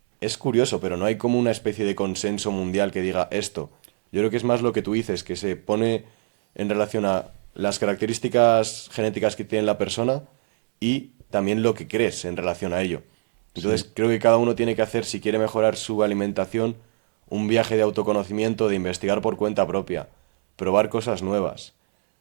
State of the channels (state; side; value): silent; left; 63 dB below the other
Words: es curioso, pero no hay como una especie de consenso mundial que diga esto. Yo creo que es más lo que tú dices, que se pone en relación a las características genéticas que tiene la persona y también lo que crees en relación a ello. Entonces, Sí. creo que cada uno tiene que hacer, si quiere mejorar su alimentación, un viaje de autoconocimiento, de investigar por cuenta propia, probar cosas nuevas,